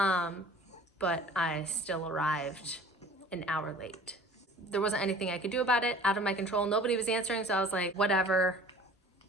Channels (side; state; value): both; normal; correlation 0.46